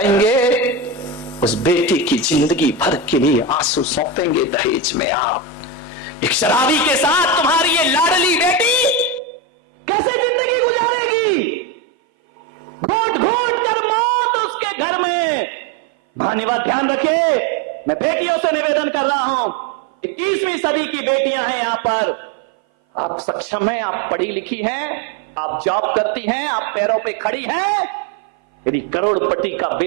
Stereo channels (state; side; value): drops out; left; at 9.2 s